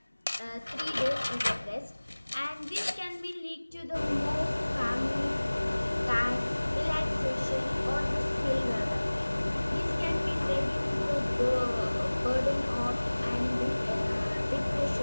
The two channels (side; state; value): both; inverted; correlation -1.00